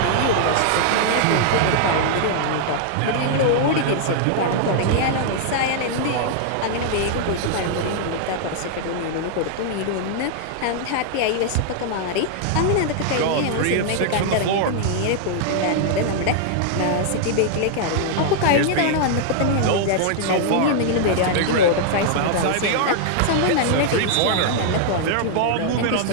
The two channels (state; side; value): different; both; correlation -0.01